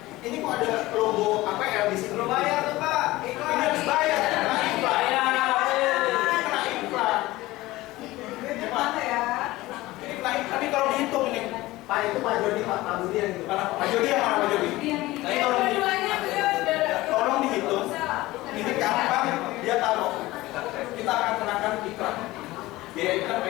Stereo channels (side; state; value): right; quieter; 18.5 dB